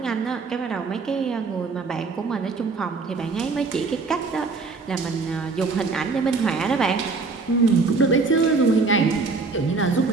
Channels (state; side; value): quieter; left; 4.1 dB